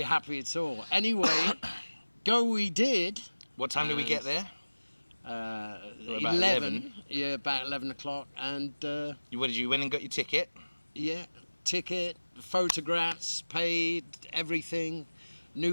happy at all. Anyway, go we did. What time did we get there? 11. Yeah, about 11 o'clock. And what did you win and got your ticket? Yeah, ticket, photographs, paid, everything.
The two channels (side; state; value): both; inverted; correlation -1.00